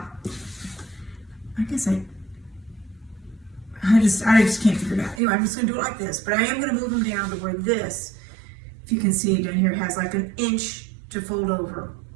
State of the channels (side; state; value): left; drops out; at 5.2 s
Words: I guess I just can't figure it out. Anyway, I'm just going to do it like this, but I am going to move them down to where this, if you can see down here, has like an inch to fold over.